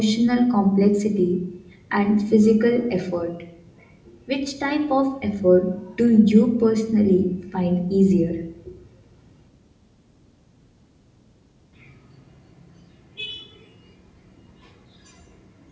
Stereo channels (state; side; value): identical; both; correlation 1.00